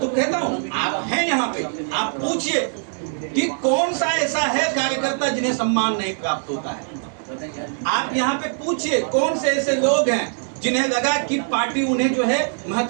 कहता हूँ, आप हैं यहाँ पे, आप पूछिए कि कौन सा ऐसा है कार्यकर्ता जिन्हें सम्मान नहीं प्राप्त होता है। आप यहाँ पे पूछिए कौन से ऐसे लोग हैं जिन्हें लगा कि पार्टी उन्हें जो है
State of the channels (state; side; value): silent; left; 58 dB below the other